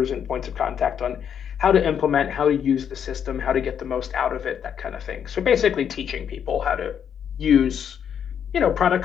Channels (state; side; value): quieter; right; 8.3 dB